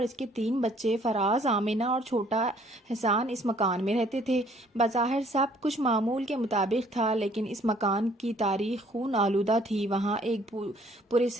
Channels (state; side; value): normal; both; correlation 0.60